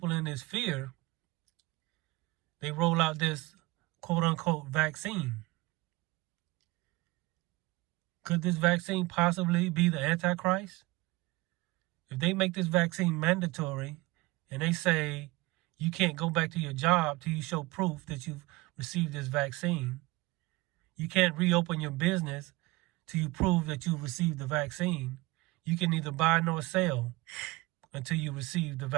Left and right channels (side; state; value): left; quieter; 22.0 dB